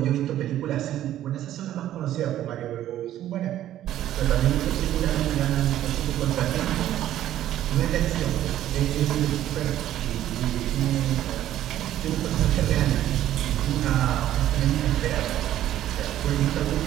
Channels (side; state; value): left; quieter; 12.5 dB